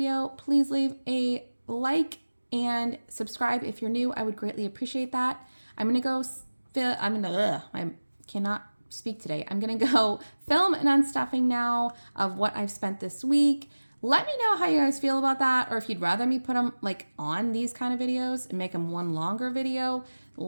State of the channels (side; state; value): both; inverted; correlation -1.00